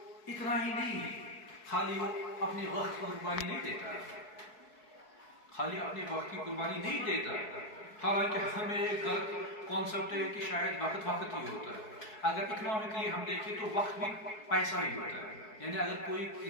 اتنا ہی نہیں، خالی وہ اپنے وقت کی قربانی نہیں دیتا، خالی اپنے وقت کی قربانی نہیں دیتا، حالانکہ ہمیں ایک غلط کانسیپٹ ہے کہ شاید وقت ہی ہوتا ہے. اگر اکنامکلی ہم دیکھیں تو وقت بھی پیسہ ہی ہوتا ہے، یعنی اگر کوئی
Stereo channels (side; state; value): right; late; 4.6 ms